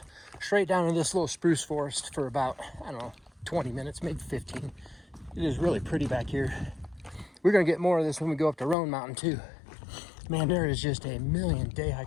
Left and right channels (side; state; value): right; drops out; at 8.8 s